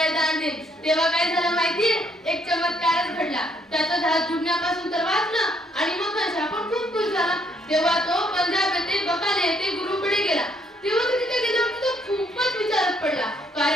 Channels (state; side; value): normal; both; correlation 0.69